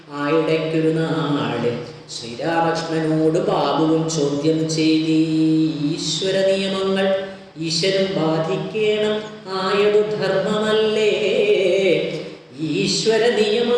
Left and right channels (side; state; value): both; identical; correlation 1.00